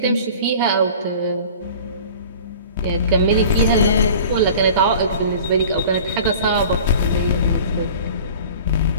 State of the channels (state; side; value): inverted; both; correlation -0.42